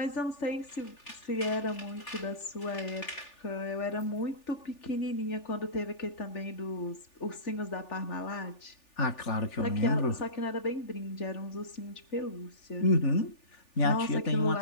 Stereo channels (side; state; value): right; late; 3.4 ms